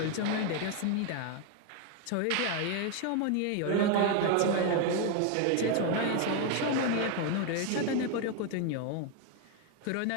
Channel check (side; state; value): both; different; correlation 0.01